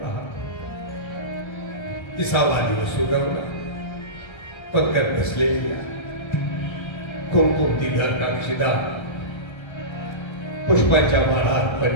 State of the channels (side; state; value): right; late; 1.3 ms